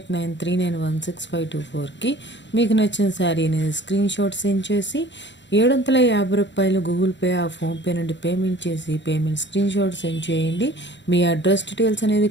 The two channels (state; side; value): late; right; 0.53 ms